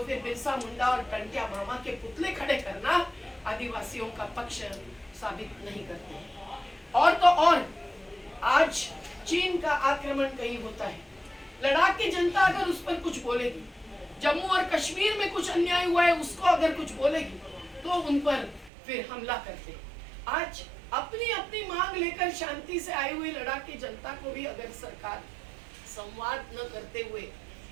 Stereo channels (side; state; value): left; drops out; at 18.7 s